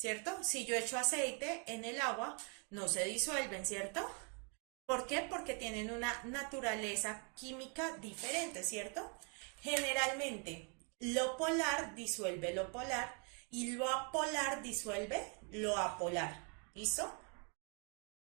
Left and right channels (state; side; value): quieter; left; 38.0 dB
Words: Si yo echo aceite en el agua, no se disuelven, ¿cierto? ¿Por qué? Porque tienen una naturaleza química diferente, ¿cierto? Generalmente, lo polar disuelve lo polar y lo apolar disuelve lo apolar. ¿Listo?